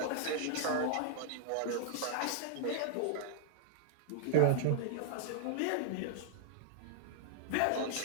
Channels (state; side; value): different; both; correlation -0.01